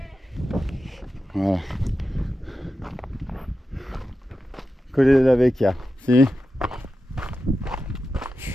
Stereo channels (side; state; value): both; normal; correlation 0.91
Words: Voilà. Colle della Vecchia, si?